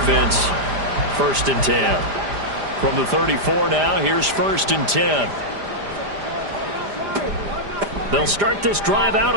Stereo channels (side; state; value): left; late; 5.0 ms